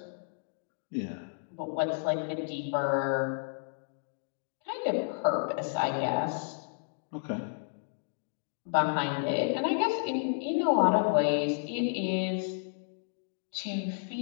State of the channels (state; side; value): silent; right; digital silence